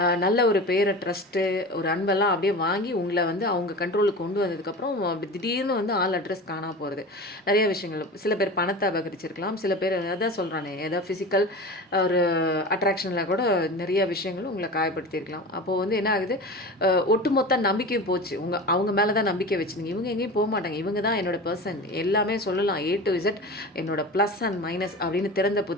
நல்ல ஒரு பேரை, ட்ரஸ்ட்டு, ஒரு அன்பெல்லாம் அப்படியே வாங்கி உங்களை வந்து அவங்க கண்ட்ரோலுக்கு கொண்டு வந்ததுக்கப்புறம் அப்படி திடீர்னு வந்து ஆள் அட்ரஸ் காணாமல் போகிறது. நிறைய விஷயங்கள், சில பேர் பணத்தை அபகரிச்சிருக்கலாம், சில பேர் அதான் சொல்கிறானே ஏதாவது ஃபிசிக்கல் ஒரு அட்ராக்ஷனில் கூட நிறைய விஷயங்களும் உங்களை காயப்படுத்தியிருக்கலாம். அப்போது வந்து என்ன ஆகுது, ஒட்டுமொத்த நம்பிக்கையும் போச்சு. அவங்க மேலே தான் நம்பிக்கை வச்சுருங்க. இவங்க எங்கேயும் போக மாட்டாங்க, இவங்க தான் என்னோட பர்சன், எல்லாமே சொல்லலாம் A to Z என்னோட ப்ளஸ் அண்ட் மைனஸ் அப்படின்னு திறந்த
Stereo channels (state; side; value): normal; both; correlation 0.31